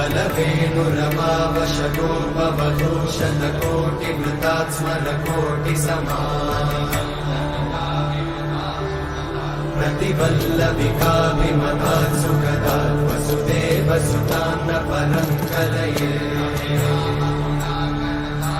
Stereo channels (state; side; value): identical; both; correlation 1.00